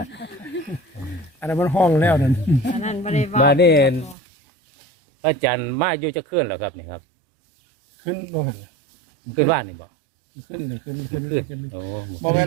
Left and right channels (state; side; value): drops out; left; at 4.2 s